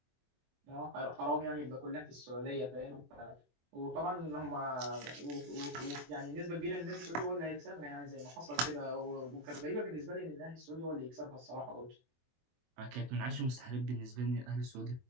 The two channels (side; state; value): left; late; 24 ms